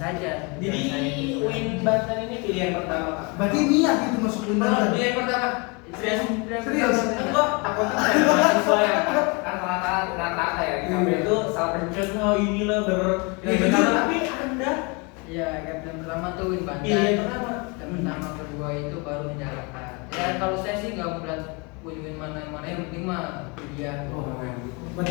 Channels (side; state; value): right; quieter; 29.2 dB